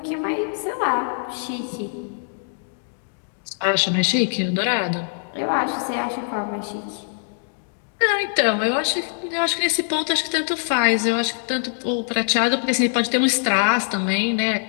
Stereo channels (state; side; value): silent; right; 62 dB below the other